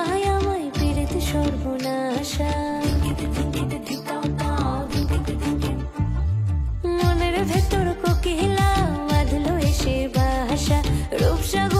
আমায় পীড়িত সর্বনাশা। মনের ভেতর কোকিলা বাঁধলো এসে বাসা,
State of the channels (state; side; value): identical; both; correlation 1.00